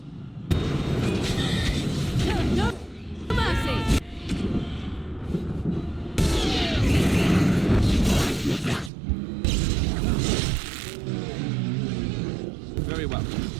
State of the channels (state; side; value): drops out; left; at 8.9 s